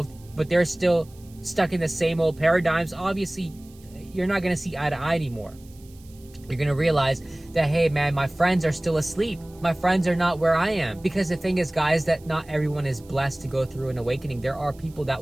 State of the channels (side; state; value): right; noise; hiss, 27 dB below the sound